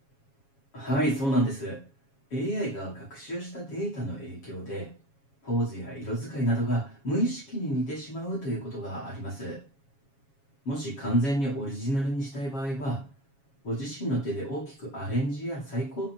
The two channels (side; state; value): right; late; 7.3 ms